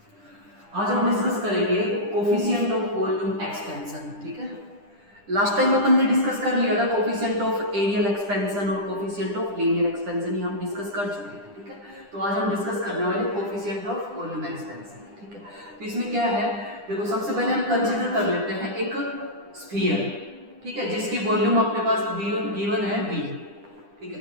आज हम डिस्कस करेंगे कोफिशिएंट ऑफ वॉल्यूम एक्सपेंशन। ठीक है, लास्ट टाइम अपन ने डिस्कस कर लिया था कोफिशिएंट ऑफ एरियल एक्सपेंशन और कोफिशिएंट ऑफ लीनियर एक्सपेंशन, ये हम डिस्कस कर चुके थे। ठीक है, तो आज हम डिस्कस करने वाले कोफिशिएंट ऑफ वॉल्यूम एक्सपेंशन। ठीक है, तो इसमें क्या है, देखो सबसे पहले हम कंसीडर कर लेते हैं एक स्फीयर, ठीक है, जिसकी वॉल्यूम अपने पास गिवन है v। ठीक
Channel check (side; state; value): left; late; 10 ms